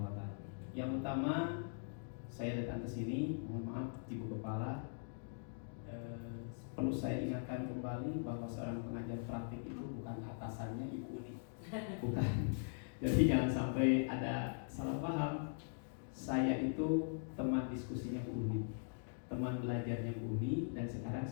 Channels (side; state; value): right; silent; digital silence